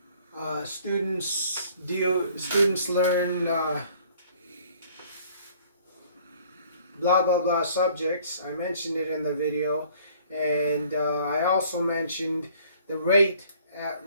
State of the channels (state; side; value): inverted; both; correlation -0.56